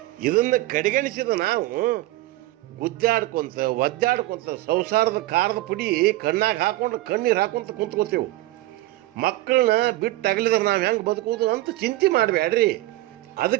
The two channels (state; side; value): quieter; left; 17.6 dB